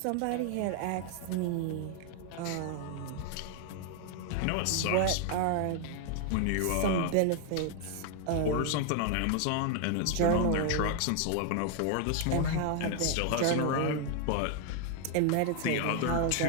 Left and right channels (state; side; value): different; both; correlation 0.00